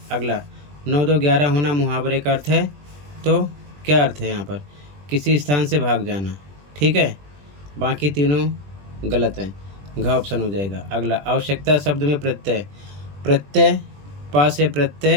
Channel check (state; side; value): late; left; 20 ms